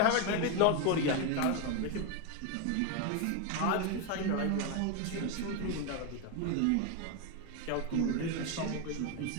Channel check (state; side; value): different; both; correlation 0.01